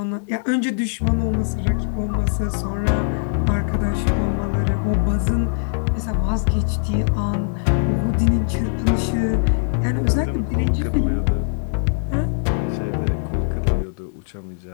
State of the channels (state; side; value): silent; right; digital silence